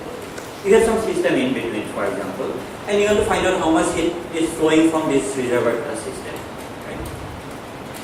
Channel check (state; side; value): identical; both; correlation 1.00